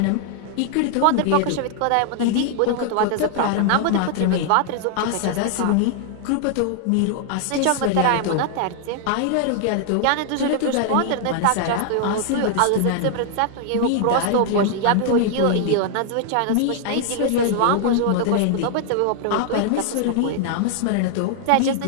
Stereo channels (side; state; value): both; different; correlation 0.00